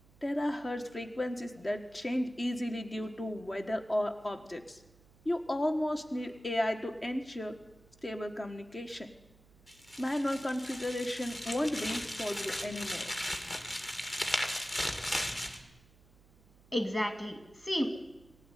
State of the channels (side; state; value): right; noise; hum, 27 dB below the sound